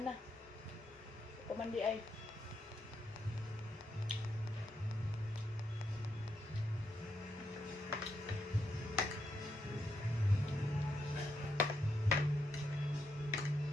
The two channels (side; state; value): both; normal; correlation 0.80